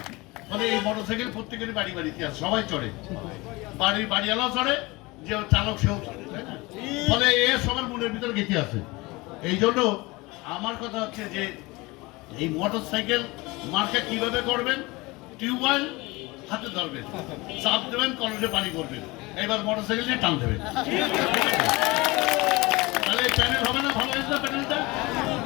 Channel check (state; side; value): quieter; right; 23.1 dB